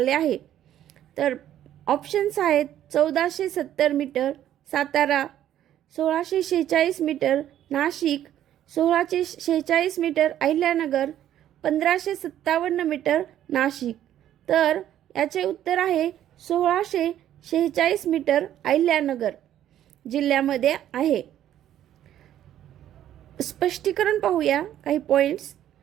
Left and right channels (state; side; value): quieter; left; 11.6 dB